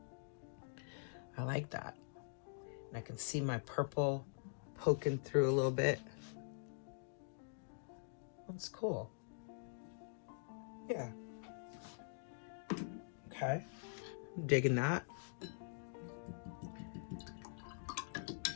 I like that. I can see my purple poking through a little bit. That's cool. Yeah. Okay. I'm digging that.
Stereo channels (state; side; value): silent; right; digital silence